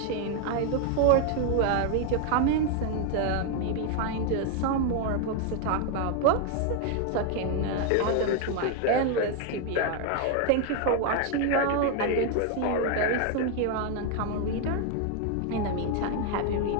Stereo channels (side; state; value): both; different; correlation 0.00